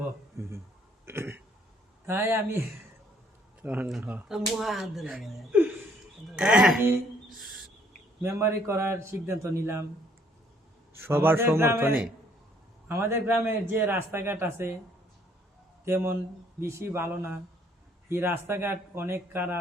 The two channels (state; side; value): normal; both; correlation 0.64